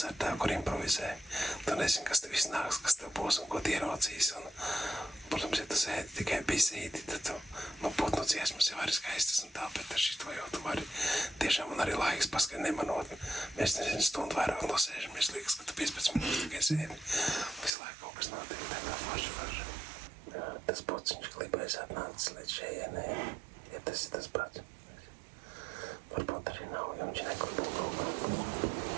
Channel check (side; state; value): left; drops out; at 17.7 s